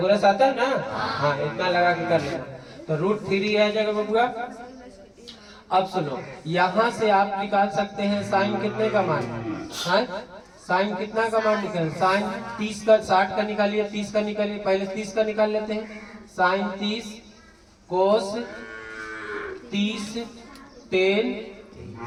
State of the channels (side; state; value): both; identical; correlation 1.00